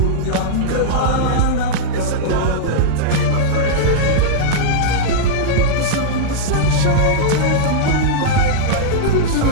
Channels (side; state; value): both; different; correlation -0.03